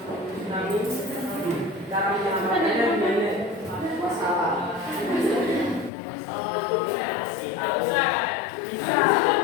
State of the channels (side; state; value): right; drops out; at 5.9 s